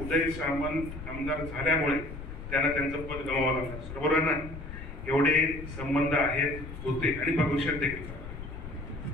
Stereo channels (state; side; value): noise; left; rumble, 10 dB below the sound